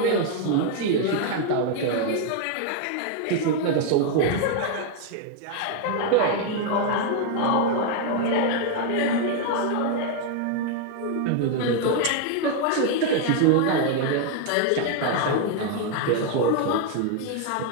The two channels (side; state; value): both; different; correlation 0.00